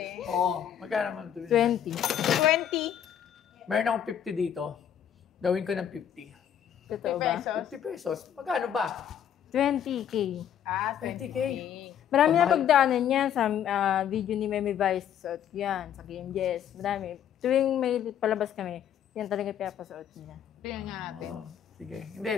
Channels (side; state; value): right; quieter; 9.5 dB